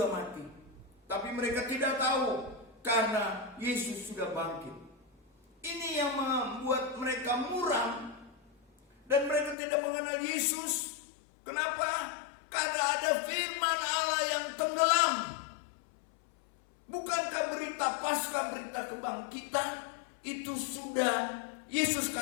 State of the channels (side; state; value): right; drops out; at 9.6 s